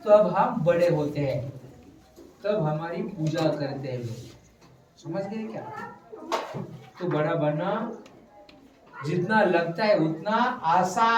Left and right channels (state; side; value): identical; both; correlation 1.00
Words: तब हम बड़े होते हैं। तब हमारी पूजा करते हैं लोग। समझ गए क्या? तो बड़ा बनना जितना लगता है उतना